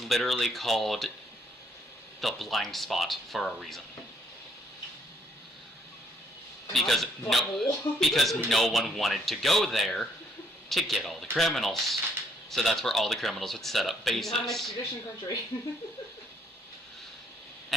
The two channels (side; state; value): both; normal; correlation 0.69